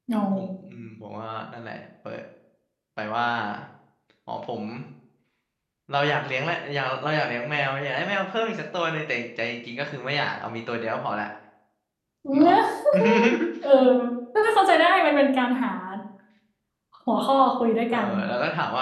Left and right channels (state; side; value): identical; both; correlation 1.00